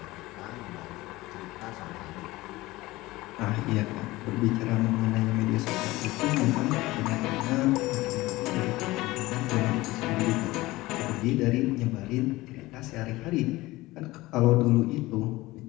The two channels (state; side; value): quieter; right; 19.4 dB